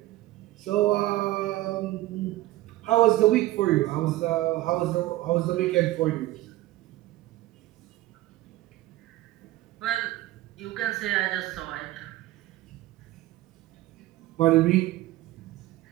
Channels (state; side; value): quieter; left; 16.6 dB